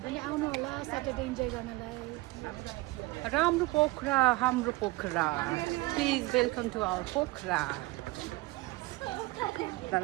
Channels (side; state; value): left; quieter; 21.4 dB